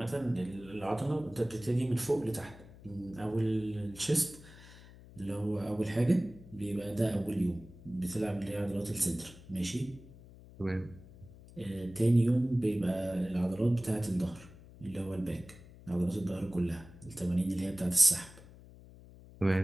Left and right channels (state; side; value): noise; left; hum, 20 dB below the sound